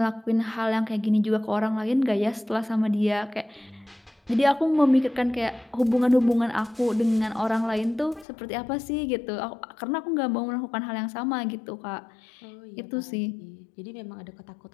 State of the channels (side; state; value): right; drops out; at 8.2 s